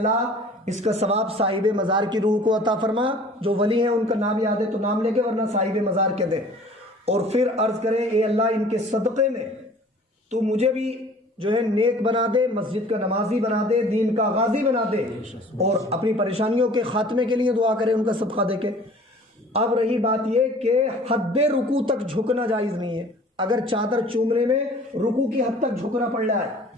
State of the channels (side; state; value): both; normal; correlation 0.48